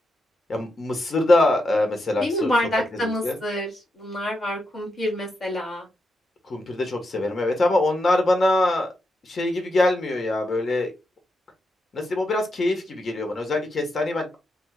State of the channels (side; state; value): both; normal; correlation 0.85